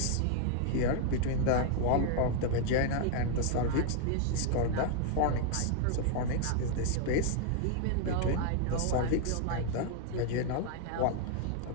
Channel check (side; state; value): both; different; correlation 0.00